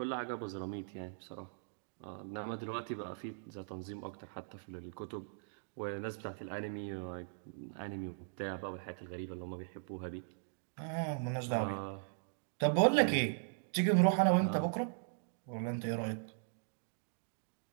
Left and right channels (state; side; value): silent; left; digital silence